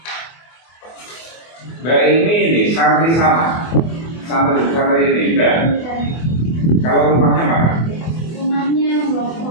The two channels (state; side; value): late; right; 24 ms